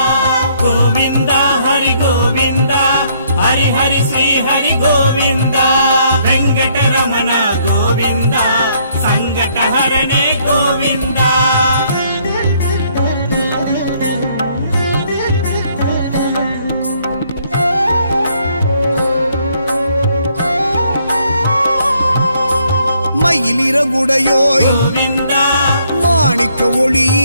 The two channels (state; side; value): inverted; both; correlation -0.68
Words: கோவிந்தா ஹரி கோவிந்தா ஹரி ஹரி ஸ்ரீ ஹரி கோவிந்தா வெங்கடரமண கோவிந்தா சங்கடஹரணே கோவிந்தா. மயிலிறகுடையோய் கோவிந்தா மாணிக்க